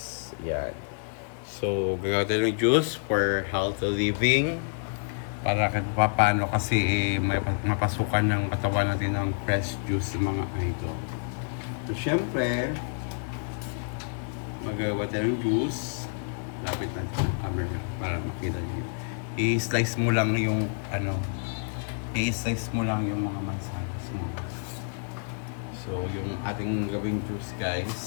Yan. So, gagawa tayo ng juice for healthy living. Para kahit paano kasi may mapasukan ng katawan natin ng fresh juice ng mga idol. So, syempre, magagawa tayo ng juice. Lapit natin sa camera para makita nyo. I-slice mo lang yung i-slice mo lang yung mga mansanas mo. So, yung ating gawing juice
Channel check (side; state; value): right; silent; digital silence